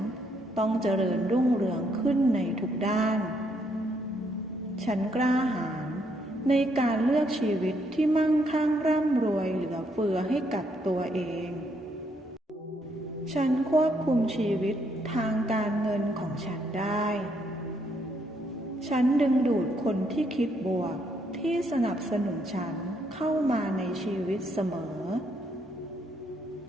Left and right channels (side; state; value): both; normal; correlation 0.73